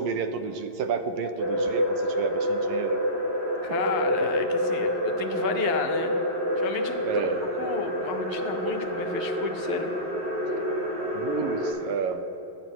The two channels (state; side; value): late; left; 11 ms